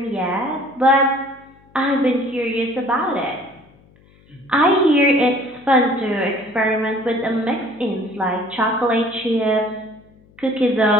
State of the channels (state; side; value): noise; left; hum, 29 dB below the sound